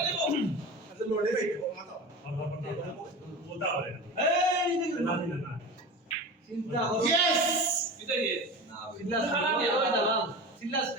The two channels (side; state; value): both; normal; correlation 0.31